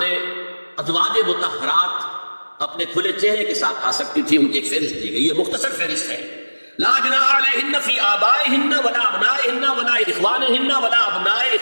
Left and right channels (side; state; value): both; inverted; correlation -1.00